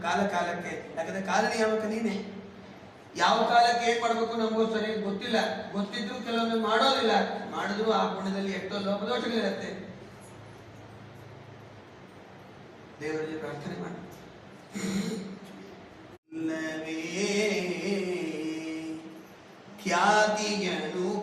ಕಾಲ ಕಾಲಕ್ಕೆ. ಯಾಕಂದ್ರೆ ಕಾಲ ನಿಯಾಮಕ ನೀನೆ. ಯಾವ ಕಾಲಕ್ಕೆ ಏನ್ ಮಾಡ್ಬೇಕು ನಮಗೂ ಸರಿಯಾಗಿ ಗೊತ್ತಿಲ್ಲ. ಗೊತ್ತಿದ್ರು ಕೆಲವೊಮ್ಮೆ ಮಾಡೋದಿಲ್ಲ, ಮಾಡಿದ್ರು ಆ ಪುಣ್ಯದಲ್ಲಿ ಎಷ್ಟೋ ಲೋಪದೋಷಗಳಿರುತ್ತೆ. ದೇವರಲ್ಲಿ ಪ್ರಾರ್ಥನೆ ಮಾಡಿ. ಖ್ಯಾತಿಯನು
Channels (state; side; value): identical; both; correlation 1.00